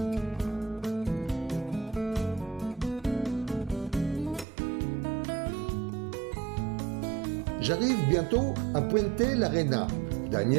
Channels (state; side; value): drops out; left; at 4.5 s